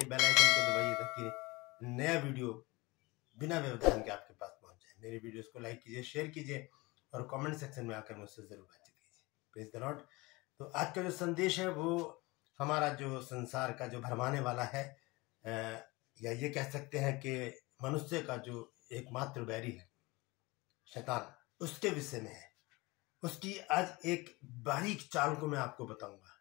बेल आइकन को दबाइए ताकि नया वीडियो बिना व्यवधान के आपके पास पहुंच जाए। मेरे वीडियोस को लाइक कीजिए, शेयर कीजिए और कमेंट सेक्शन में आकर मुझसे जरूर बातचीत कीजिए। Praise the Lord. तो आज का जो संदेश है वो हमारा जो संसार का जो भरमाने वाला है, या ये कह सकते हैं कि मनुष्य का जो एकमात्र बैरी है शैतान, उसके विषय में है। उसकी आज एक बारीक चाल को मैं आपको बताऊंगा।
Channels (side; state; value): right; quieter; 23.3 dB